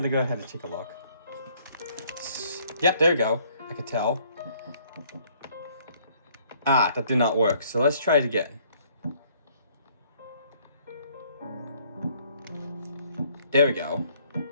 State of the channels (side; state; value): both; inverted; correlation -0.62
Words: go ahead and take a look. Yep, there we go. I could tell. That did not work. So let's try it again. There we go.